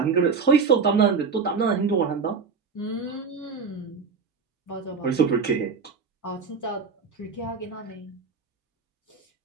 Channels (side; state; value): left; quieter; 5.2 dB